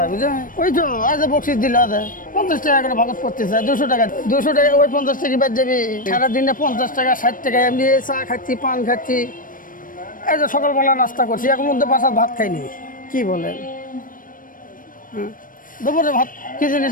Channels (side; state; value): right; late; 0.40 ms